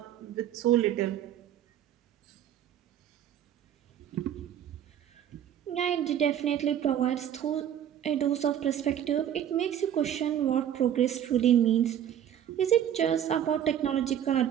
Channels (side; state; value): left; quieter; 10.2 dB